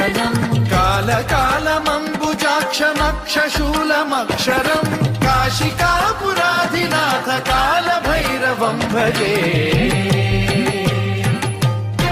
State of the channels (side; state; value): both; identical; correlation 1.00